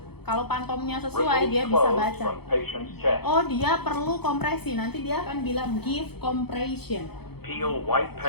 Kalau pantomnya sesuai, dia bisa Clothes baca. from patient's chest. Oh, dia perlu kompresi. Nanti dia akan bilang give compression. Peel white Sudah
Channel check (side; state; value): right; late; 0.97 ms